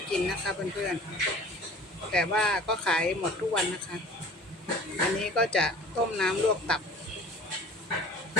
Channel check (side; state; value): both; normal; correlation 0.45